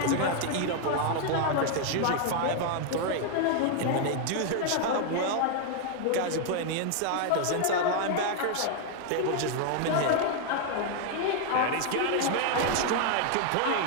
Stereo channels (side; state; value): both; different; correlation 0.00